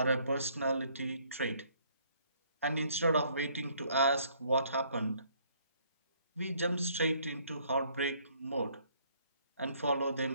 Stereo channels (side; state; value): both; inverted; correlation -0.64